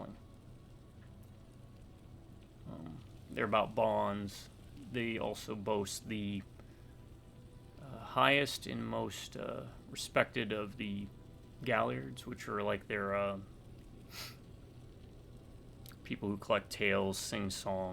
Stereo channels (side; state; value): both; identical; correlation 1.00